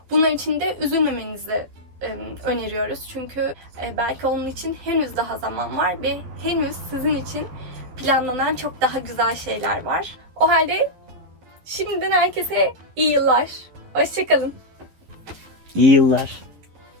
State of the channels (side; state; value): left; late; 11 ms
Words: bunlar için de üzülmemenizi öneriyoruz. Çünkü belki onun için henüz daha zaman var ve henüz sizin için planlanan çok daha güzel şeyler var. O halde şimdiden herkese iyi yıllar. Hoşça kalın. İyi yıllar.